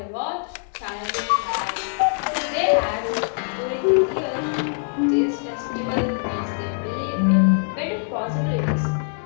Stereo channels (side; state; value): right; silent; 61 dB below the other